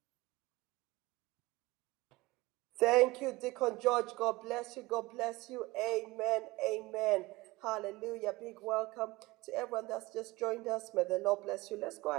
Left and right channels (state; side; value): quieter; left; 21.1 dB